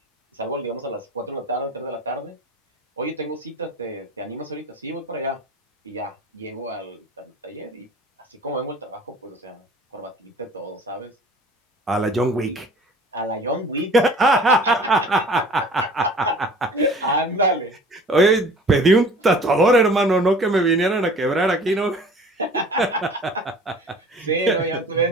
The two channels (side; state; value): both; normal; correlation 0.46